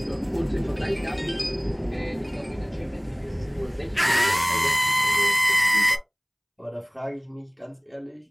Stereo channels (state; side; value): identical; both; correlation 1.00